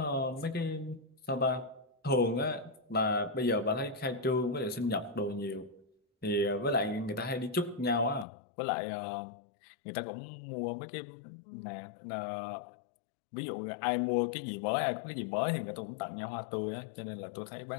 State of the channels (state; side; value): drops out; right; at 8.2 s